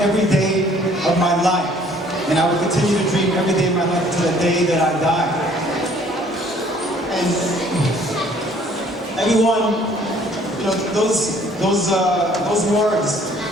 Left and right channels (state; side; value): normal; both; correlation 0.58